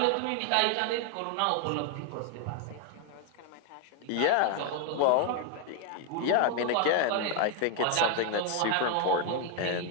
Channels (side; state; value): both; different; correlation 0.01